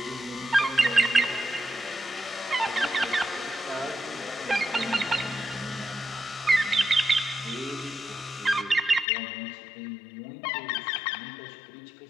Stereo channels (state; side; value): drops out; right; at 9.1 s